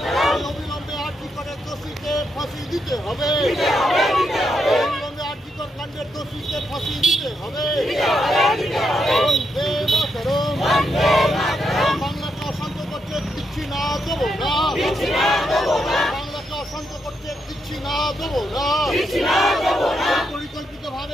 অবিলম্বে আর্থিকরের দোষীকে ফাঁসি দিতে হবে। অবিলম্বে আর্থিকর কাণ্ডের দোষীকে ফাঁসি দিতে হবে। বন্দে মাতরম। বাংলাকে অশান্ত করতে দিচ্ছি না, দেবো না। বাংলাকে অশান্ত করতে দিচ্ছি না, দেবো না। পরিকল্পিত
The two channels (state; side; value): normal; both; correlation 0.81